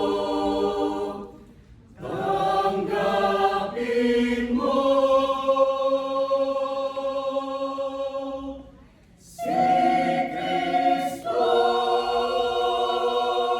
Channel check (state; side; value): identical; both; correlation 1.00